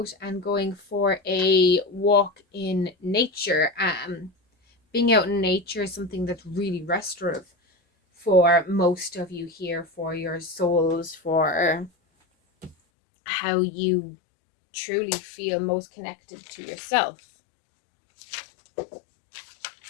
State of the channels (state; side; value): drops out; right; at 12.8 s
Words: and going for a walk in nature. Being out in nature is something that's really restorative for most of you here, for your souls, for how you truly feel most connected to yourself.